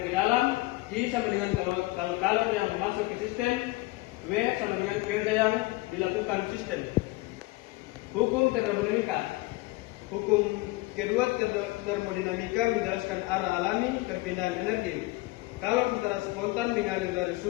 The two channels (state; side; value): quieter; right; 21.4 dB